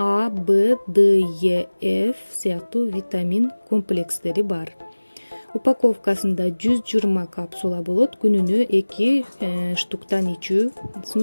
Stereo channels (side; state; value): both; inverted; correlation -1.00